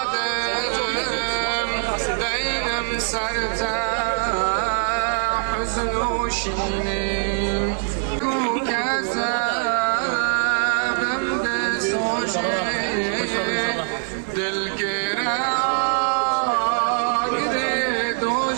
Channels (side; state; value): left; silent; digital silence